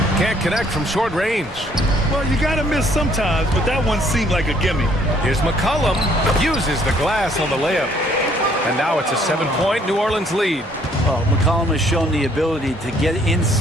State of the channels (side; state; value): both; normal; correlation 0.63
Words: Can't connect from short range. Well, you got to miss sometimes, but that one seemed like a gimme. Here's McCollum. Uses the glass on the layup. And now it's a 7-point New Orleans lead. Well, McCollum has shown the ability to get